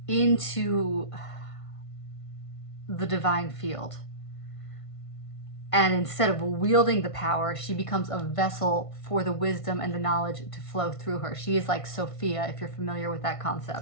into the divine field. And instead of wielding the power, she becomes a vessel for the wisdom and the knowledge to flow through her. She is like Sophia, if you're familiar with that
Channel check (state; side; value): late; right; 1.5 ms